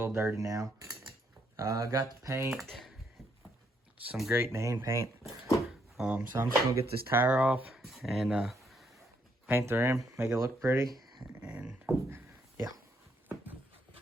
little dirty now. I got the paint, some great name paint. So I'm just going to get this tire off and paint the rim, make it look pretty, and yeah.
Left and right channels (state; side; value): normal; both; correlation 0.73